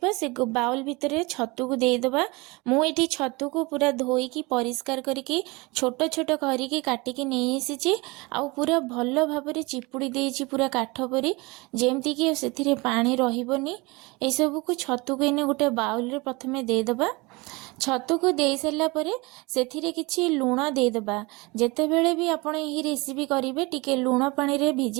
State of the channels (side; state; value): left; quieter; 24.9 dB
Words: से बाउल भितर छतु को देदबा। मुझे छतु को पूरा धोईकी परिष्कार करके छोट छोट करके काटिकी नहीं आसी आउ पूरा भल भाव चिपुड़ी देइछि पूरा काठ परी जेमती कि से पानी रहिबनी। ए सब को छतु को इने गोटे बाउल रे प्रथमे देदबा। छतु को दे सारा पर से किछि लुण देदबा। जेतेबेले भी आपण यही रेसिपी करेंगे टिके लुण पानी रे